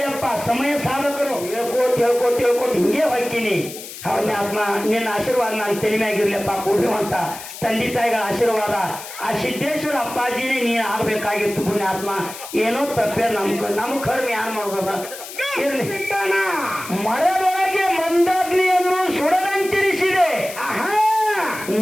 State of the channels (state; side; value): noise; left; hiss, 12 dB below the sound